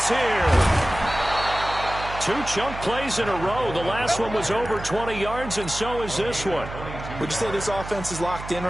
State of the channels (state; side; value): noise; right; hum, 11 dB below the sound